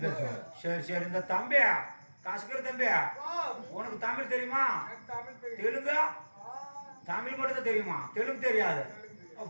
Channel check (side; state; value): both; inverted; correlation -1.00